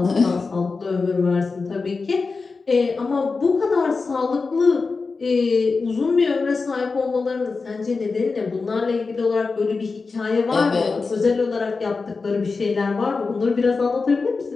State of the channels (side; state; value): right; quieter; 4.3 dB